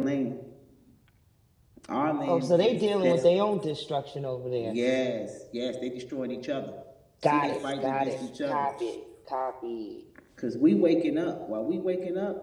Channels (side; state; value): both; identical; correlation 1.00